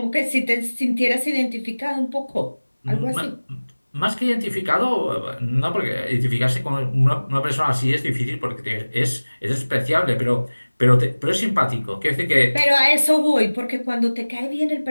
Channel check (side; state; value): both; inverted; correlation -1.00